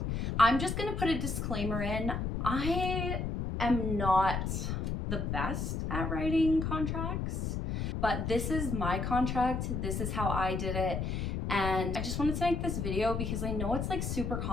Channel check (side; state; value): left; noise; rumble, 2 dB below the sound